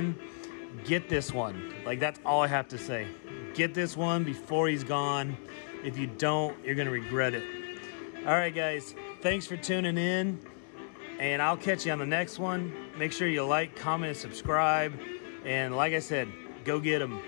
Get this one. Like, that's all I have to say. Get this one before he's gone. If you don't, you're gonna regret it. All right, guys, thanks for tuning in, and I'll catch you on the next one. Make sure you like, comment, and subscribe. And like I said, go get them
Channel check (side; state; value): right; silent; digital silence